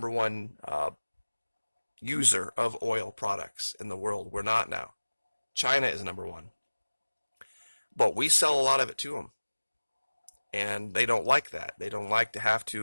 one user of oil products in the world. We're not now. China is number one. But we sell a lot of it to them. And they don't like that. They don't like to have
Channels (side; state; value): both; inverted; correlation -1.00